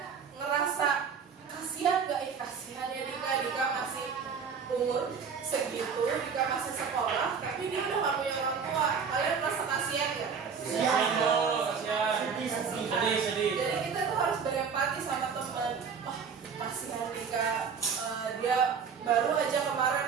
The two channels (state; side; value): quieter; left; 6.2 dB